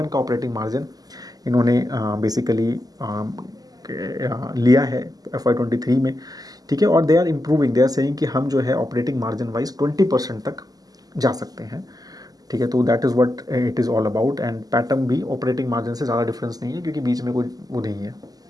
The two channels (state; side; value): late; left; 0.18 ms